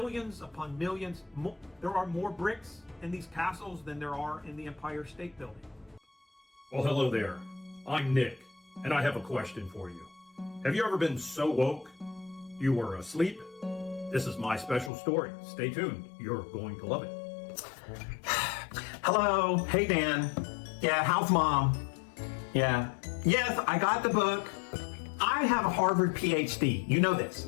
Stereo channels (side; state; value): right; drops out; at 14.9 s